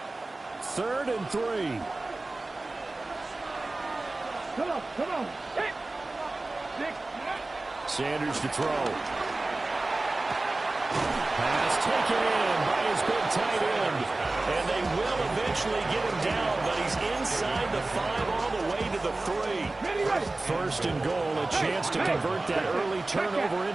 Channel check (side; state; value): left; quieter; 3.1 dB